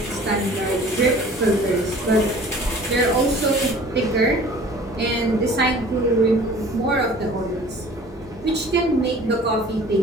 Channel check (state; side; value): normal; both; correlation 0.47